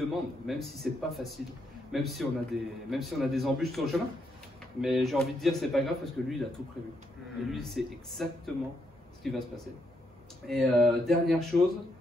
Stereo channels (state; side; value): normal; both; correlation 0.78